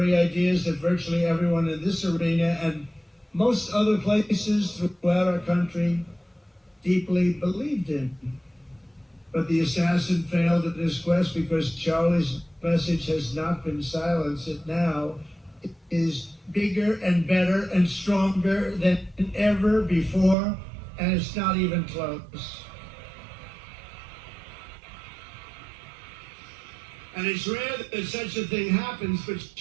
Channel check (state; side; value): drops out; left; at 20.4 s